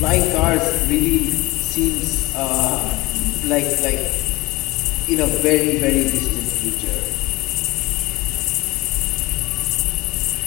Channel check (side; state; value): right; quieter; 20.7 dB